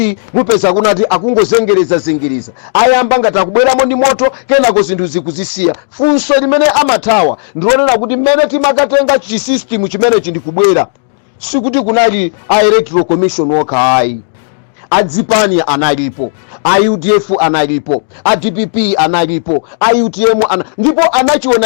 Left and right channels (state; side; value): silent; right; digital silence